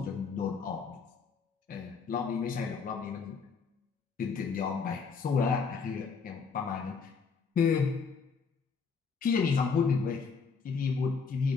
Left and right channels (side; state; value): right; quieter; 5.4 dB